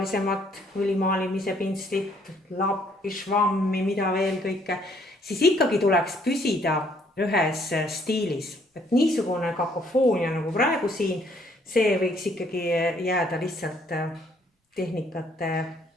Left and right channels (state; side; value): normal; both; correlation 0.66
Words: õlimaalimise pintslit, lappi, švammi, mida veel kõike, siis ikkagi tuleks püsida ühes stiilis. Et niisugune kakofoonia nagu praegu siin, see võiks ikkagi jääda lihtsalt tehnikate